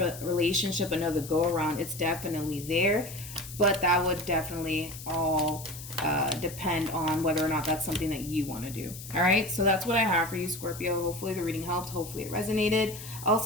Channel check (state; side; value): noise; left; hiss, 13 dB below the sound